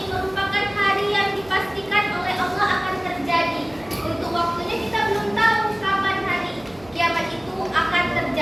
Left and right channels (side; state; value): right; noise; hum, 24 dB below the sound